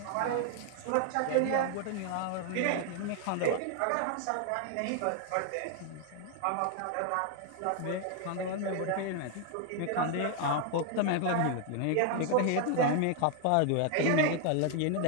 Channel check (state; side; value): different; both; correlation 0.00